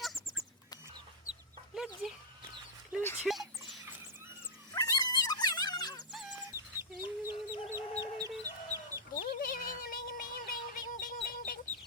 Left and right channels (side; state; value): both; normal; correlation -0.10